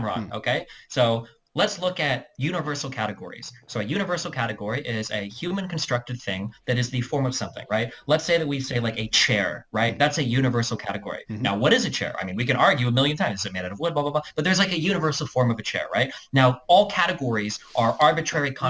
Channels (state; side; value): identical; both; correlation 1.00